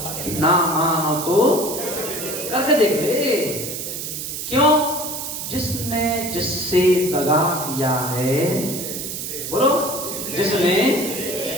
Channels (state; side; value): noise; right; hiss, 6 dB below the sound